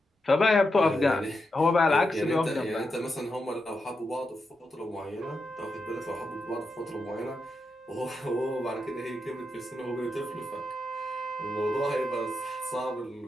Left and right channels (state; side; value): normal; both; correlation 0.86